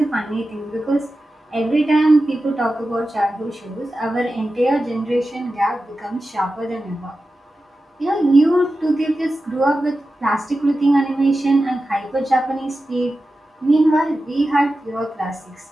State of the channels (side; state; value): both; normal; correlation 0.93